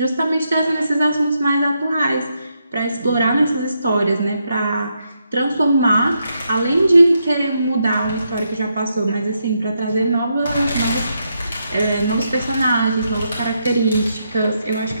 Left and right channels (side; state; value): both; inverted; correlation -0.81